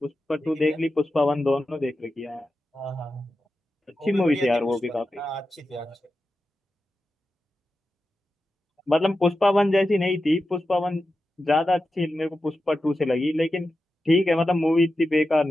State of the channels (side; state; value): both; normal; correlation 0.91